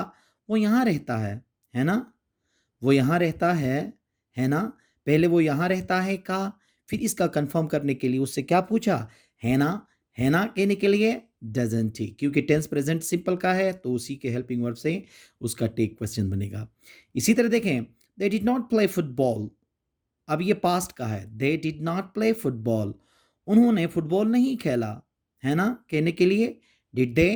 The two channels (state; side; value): identical; both; correlation 1.00